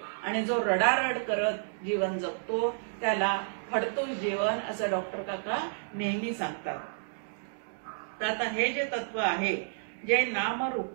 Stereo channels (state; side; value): silent; left; digital silence